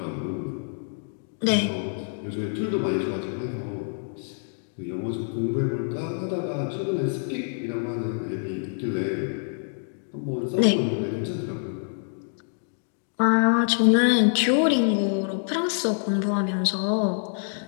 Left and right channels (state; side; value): silent; right; digital silence